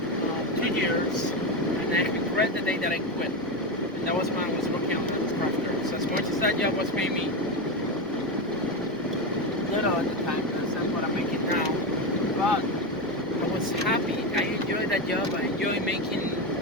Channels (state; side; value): normal; both; correlation 0.15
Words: 2 years, and I regret the day that I quit. And that was when I was working on those crafters. So as much as that job was paying me little at the time, that's not what I'm making now. But I was happy. I enjoyed that job. I enjoyed making